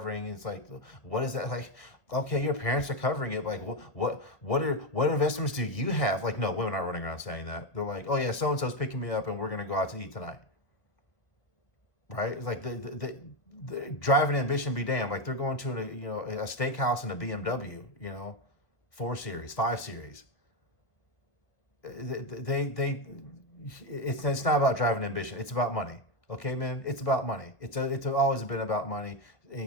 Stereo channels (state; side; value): late; right; 1.3 ms